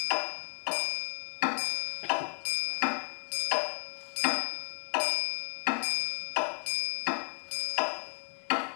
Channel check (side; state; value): right; silent; 56 dB below the other